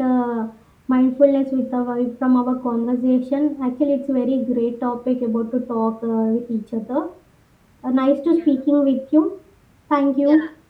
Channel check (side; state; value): both; identical; correlation 1.00